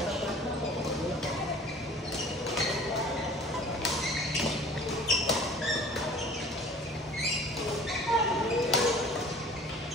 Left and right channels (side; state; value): both; normal; correlation 0.46